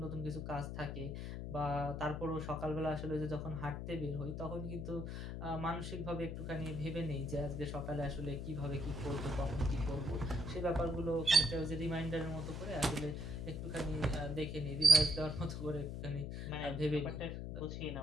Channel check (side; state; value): left; noise; hum, 5 dB below the sound